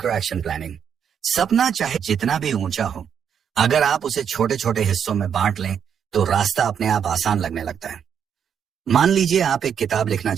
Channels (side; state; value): left; quieter; 8.0 dB